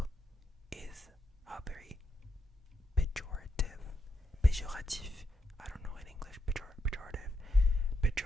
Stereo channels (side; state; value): both; normal; correlation 0.82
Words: is a very pejorative, I don't know in English,